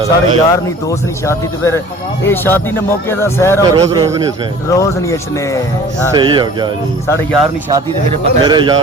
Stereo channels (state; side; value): normal; both; correlation 0.46